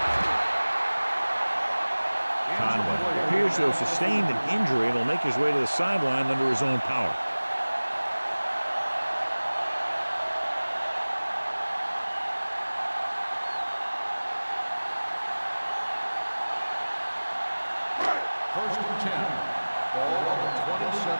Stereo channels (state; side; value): inverted; both; correlation -1.00